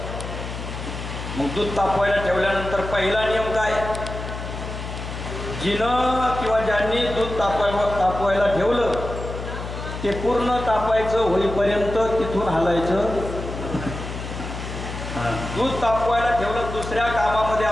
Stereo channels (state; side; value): noise; left; hum, 8 dB below the sound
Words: मग दूध तापवायला ठेवल्यानंतर पहिला नियम काय? जिनं किंवा ज्यांनी दूध तापवायला ठेवलं ते पूर्ण तापायचं होईपर्यंत तिथून हलायचं. दूध तापवायला ठेवलं दुसऱ्या कामामध्ये